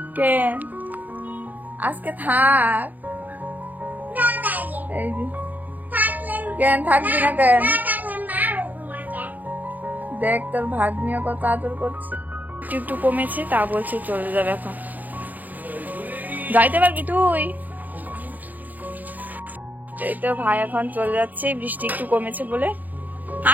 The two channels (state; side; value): late; left; 0.083 ms